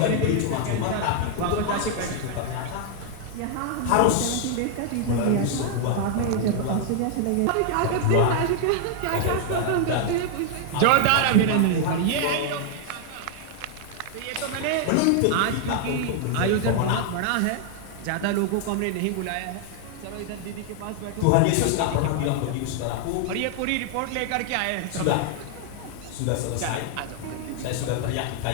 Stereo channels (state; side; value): different; both; correlation 0.00